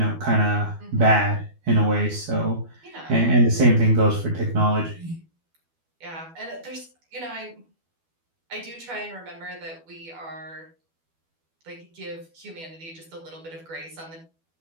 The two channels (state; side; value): late; left; 12 ms